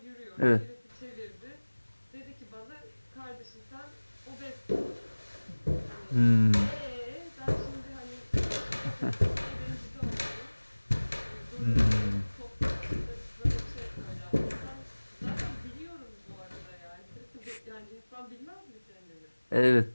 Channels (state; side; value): inverted; both; correlation -1.00